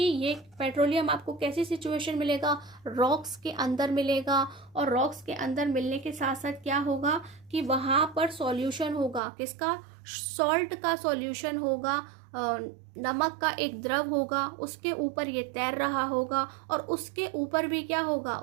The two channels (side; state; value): left; drops out; at 9.2 s